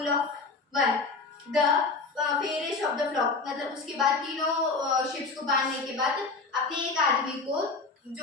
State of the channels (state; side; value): quieter; right; 4.1 dB